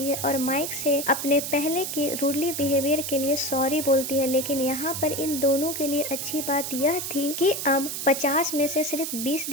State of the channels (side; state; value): right; noise; hiss, 4 dB below the sound